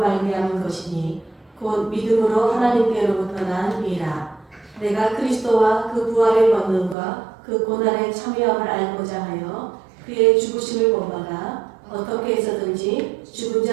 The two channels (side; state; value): left; drops out; at 7.0 s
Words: 것이니 곧 믿음으로 하나님께로부터 난 이라. 내가 그리스도와 그 부활의 권능과 그 고난의 참여함을 알고자 하여 그의 죽으심을 본받아 어떻게 해서든지 죽은